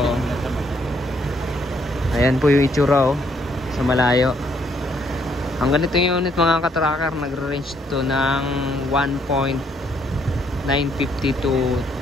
Ayan po yung itsura, oh. Sa malayo. Ang ganito yung unit mga katracker, nagre-range to ng 1.950 to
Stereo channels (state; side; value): normal; both; correlation 0.70